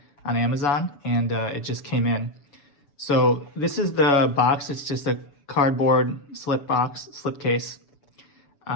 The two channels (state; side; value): late; right; 7.0 ms